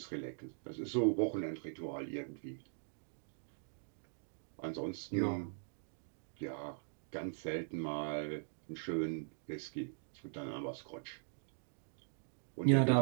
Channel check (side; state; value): left; silent; digital silence